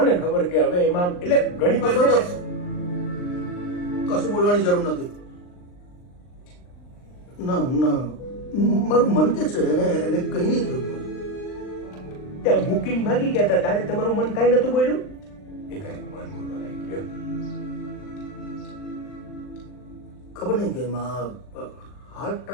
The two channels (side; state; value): right; late; 39 ms